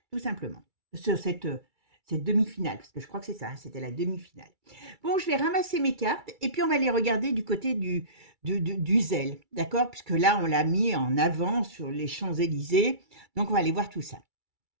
tout simplement. Sur cette demi-finale, parce que je crois que c'est ça, c'était la demi-finale. Bon, je vais ramasser mes cartes et puis on va les regarder du côté du zèle, d'accord? Puisque là, on l'a mis en avant sur les Champs-Élysées. Donc, on va aller voir tout ça.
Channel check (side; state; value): left; late; 2.3 ms